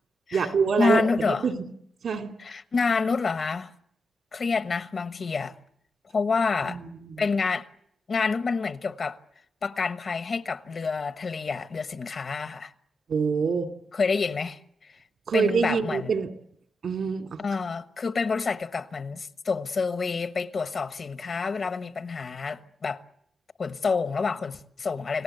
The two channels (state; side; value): normal; both; correlation 0.85